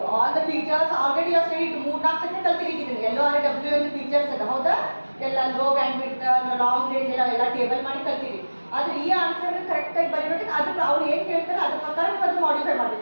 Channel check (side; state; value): both; inverted; correlation -1.00